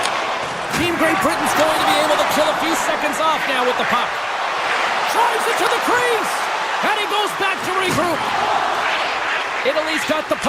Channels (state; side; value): identical; both; correlation 1.00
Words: Team Great Britain's going to be able to kill a few seconds off now with the puck. Drives it to the crease. And he goes back to regroup. Italy's got the